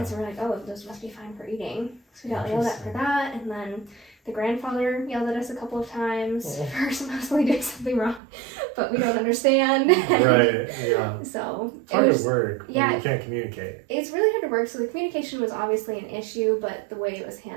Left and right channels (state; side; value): drops out; left; at 8.2 s